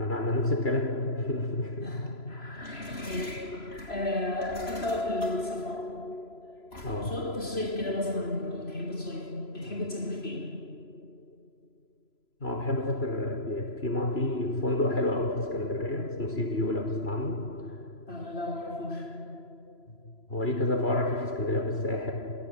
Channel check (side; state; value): right; late; 3.0 ms